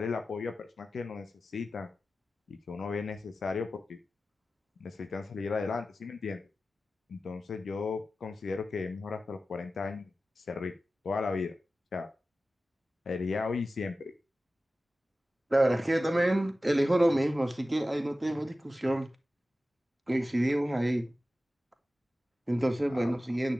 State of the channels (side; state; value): both; normal; correlation 0.94